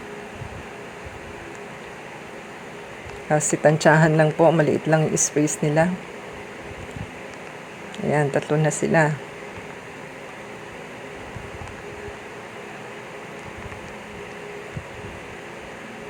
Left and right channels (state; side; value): identical; both; correlation 1.00